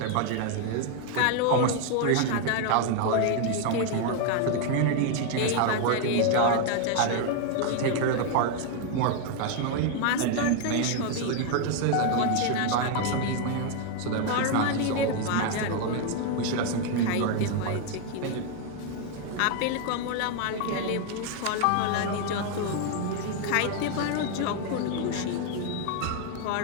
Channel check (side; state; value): both; different; correlation 0.01